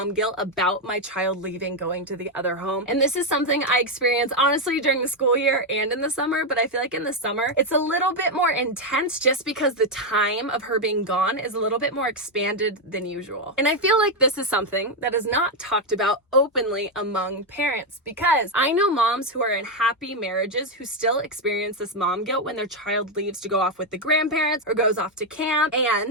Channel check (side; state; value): both; normal; correlation 0.04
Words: guilt about my child leaving, going to the other home. And this is something I experience honestly during the school year and in the summer, but I feel like in the summer it's a little bit more intense just because the time of her being gone is a little bit more expanded than usual. And I feel like this is something that is not talked about openly among parents, because I know moms who are in happy marriages who still experience this mom guilt when their child leaves to go off with the grandparents or goes off to camp.